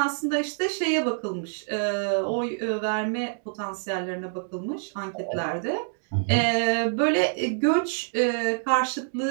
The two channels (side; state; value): left; silent; digital silence